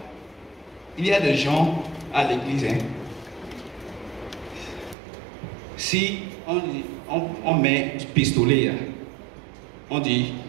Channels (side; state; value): left; drops out; at 5.0 s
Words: il y a des gens à l'église, hein? Si on met pistolet là, on dit